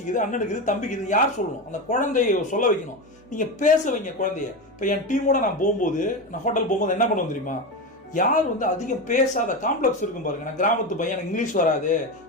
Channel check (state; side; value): normal; both; correlation 0.18